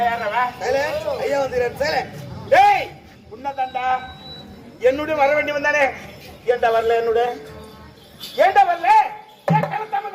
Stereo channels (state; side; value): identical; both; correlation 1.00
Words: ஐயா வந்து ஏய் உன்னதாண்டா என்னுடைய வர வேண்டி வந்தானே. ஏண்டா வரல? என்னோட ஏண்டா வரல?